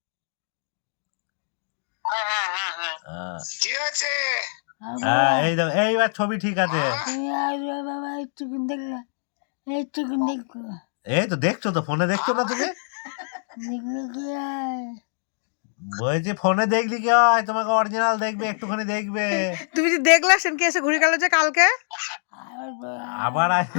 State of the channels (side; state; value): right; silent; digital silence